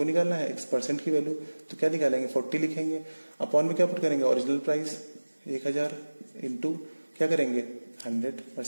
निकालना है X% की वैल्यू, तो क्या निकालेंगे 40 लिखेंगे, अपॉन में क्या पुट करेंगे, ओरिजिनल प्राइस 1000 इंटू क्या करेंगे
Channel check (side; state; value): both; inverted; correlation -1.00